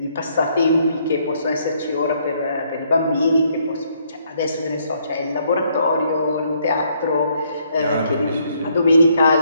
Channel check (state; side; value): inverted; both; correlation -0.70